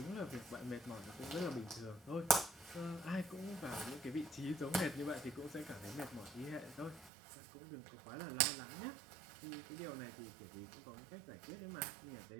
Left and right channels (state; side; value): drops out; left; at 7.1 s